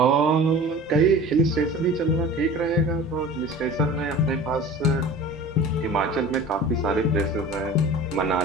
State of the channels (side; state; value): both; normal; correlation 0.39